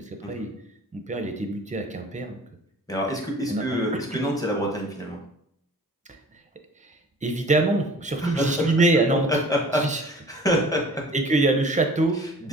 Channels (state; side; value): normal; both; correlation 0.47